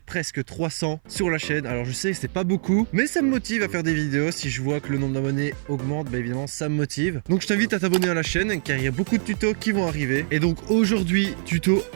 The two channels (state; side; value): silent; left; 55 dB below the other